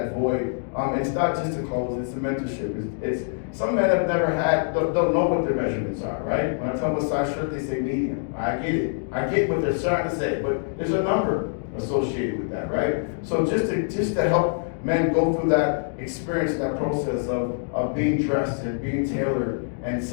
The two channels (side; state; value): right; silent; digital silence